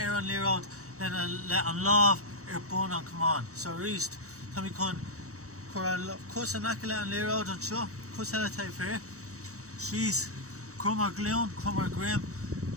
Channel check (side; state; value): left; late; 0.65 ms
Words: on Lear out. Then let on love bone on come on. So reast Tommy con cuss an acala and Lear out and show cuss hella type here. She's crummer gloon, crummer grim,